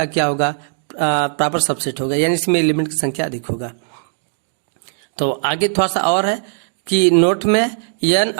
क्या होगा, प्रॉपर सबसेट होगा, यानी इसमें एलिमेंट की संख्या अधिक होगा। तो आगे थोड़ा सा और है कि नोट में n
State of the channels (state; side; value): silent; left; digital silence